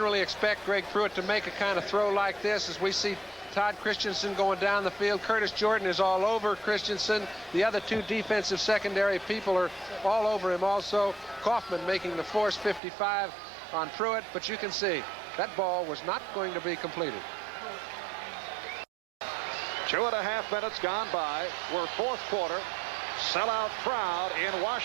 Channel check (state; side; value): drops out; left; at 12.8 s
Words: expect Greg Pruitt to make a kind of throw like this, as we see Todd Christensen going down the field. Curtis Jordan is all over Christensen. The other two defensive secondary people are all over him also. Kaufman making the force 55 on Pruitt, but you can see that ball was not going to be completed. 2.5 minutes gone by. We're fourth quarter. Sellout crowd in